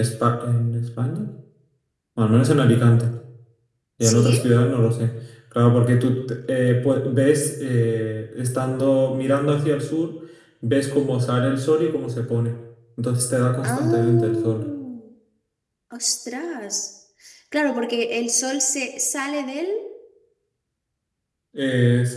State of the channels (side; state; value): both; identical; correlation 1.00